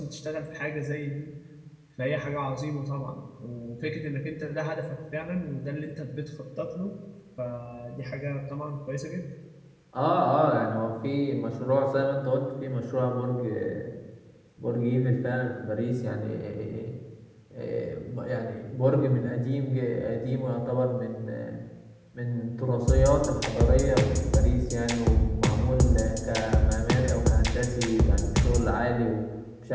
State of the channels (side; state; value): both; identical; correlation 1.00